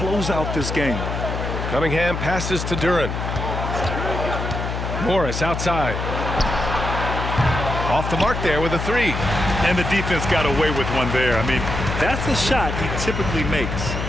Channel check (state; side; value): noise; left; hum, 4 dB below the sound